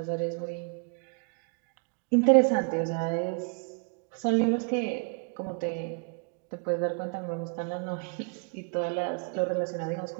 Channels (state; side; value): quieter; left; 34.4 dB